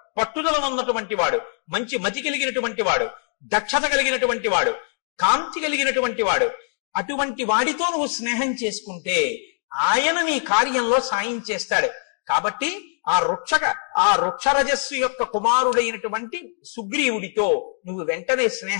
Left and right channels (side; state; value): right; silent; digital silence